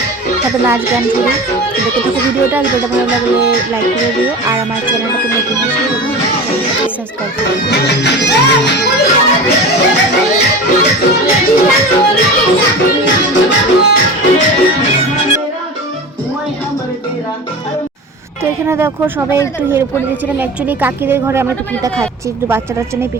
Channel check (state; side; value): normal; both; correlation 0.31